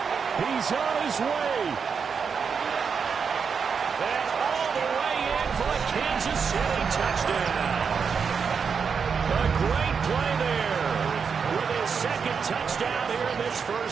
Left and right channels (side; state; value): left; quieter; 6.1 dB